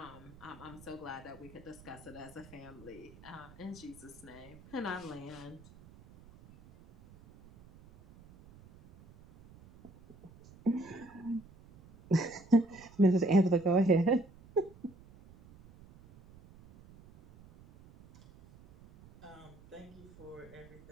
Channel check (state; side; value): noise; right; rumble, 22 dB below the sound